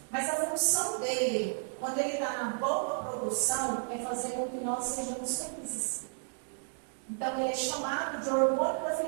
Mas a função dele, quando ele está na boa produção, é fazer com que nós sejamos felizes. Então, ele é chamado de hormônio da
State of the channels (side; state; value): left; silent; digital silence